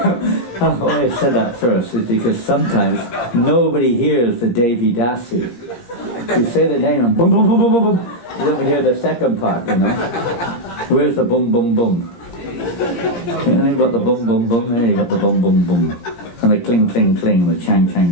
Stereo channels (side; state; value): right; late; 17 ms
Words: I said that first is because sometimes nobody hears the Devi Dasi. You say the name and boom, boom, boom, boom, boom, boom. You don't hear the second part, you know. Where's the boom, boom, boom? And you've got the boom, boom, boom. There you got the boom, boom, boom. And the cling, cling, cling, the chang,